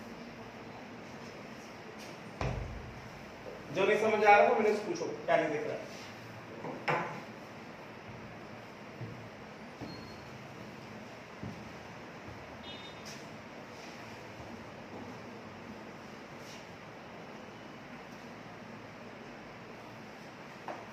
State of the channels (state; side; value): identical; both; correlation 1.00